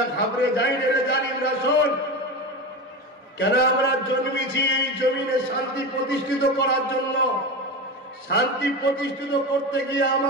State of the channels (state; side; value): normal; both; correlation 0.23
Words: ঘাবড়ে যায় রে জালিম রাসূল। কেন আমরা জন্মেছি এই জমিনে শান্তি প্রতিষ্ঠিত করার জন্য। শান্তি প্রতিষ্ঠিত করতে গিয়ে